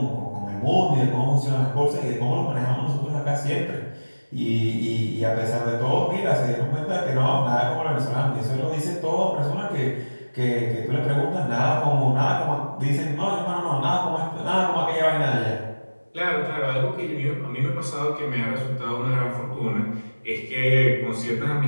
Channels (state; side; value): inverted; both; correlation -1.00